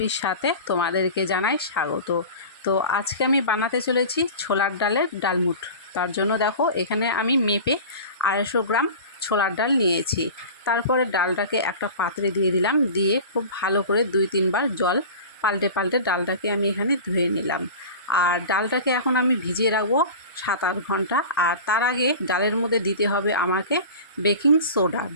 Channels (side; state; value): both; inverted; correlation -0.34